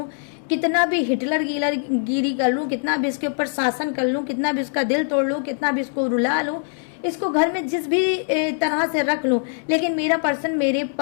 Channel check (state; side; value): silent; right; 59 dB below the other